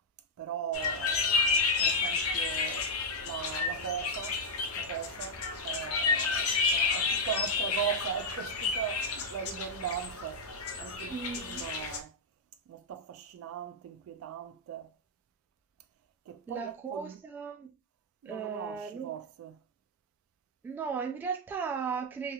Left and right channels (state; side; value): normal; both; correlation -0.01